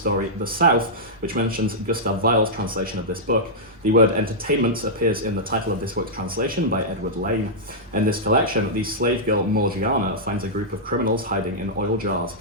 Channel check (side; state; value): both; normal; correlation -0.09